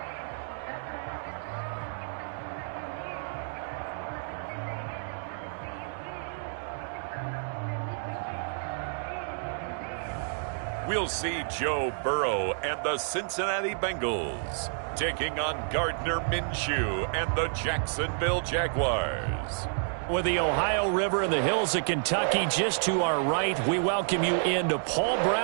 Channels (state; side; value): silent; left; digital silence